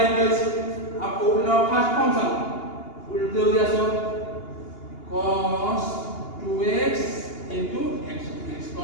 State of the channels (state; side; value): late; right; 2.8 ms